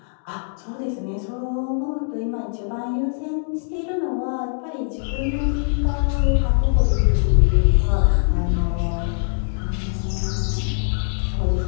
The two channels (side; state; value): right; silent; digital silence